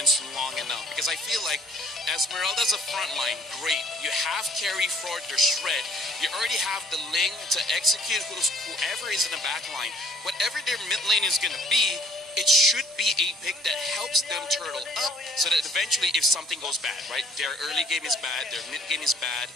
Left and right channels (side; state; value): both; normal; correlation 0.58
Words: long enough. Because I feel like Esmeralda's a front line, great. You have carry for their shred. You already have the Ling to execute whoever is in the back line. Whatever their mid lane is going to be, it should be a pick that helps them turtle up so that eventually if something goes bad, right? Their early game is bad, their mid game is bad.